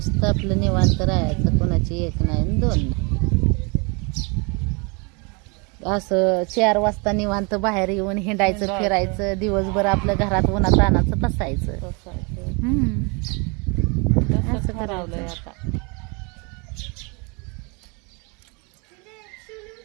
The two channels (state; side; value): quieter; left; 31.3 dB